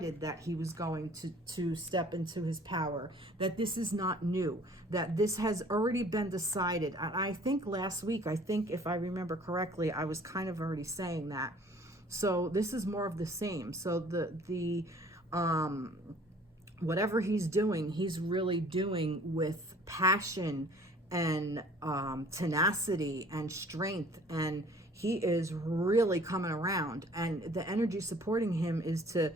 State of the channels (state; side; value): normal; both; correlation 0.52